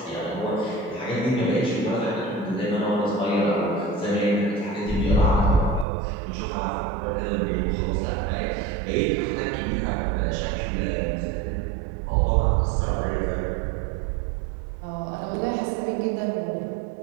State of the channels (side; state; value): left; drops out; at 5.9 s